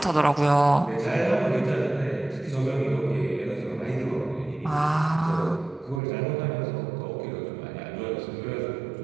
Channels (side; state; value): left; drops out; at 6.0 s